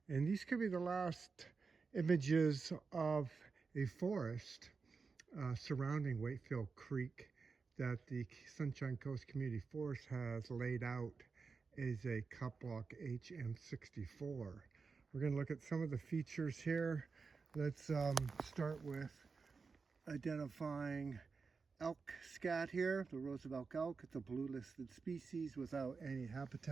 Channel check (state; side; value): quieter; left; 4.8 dB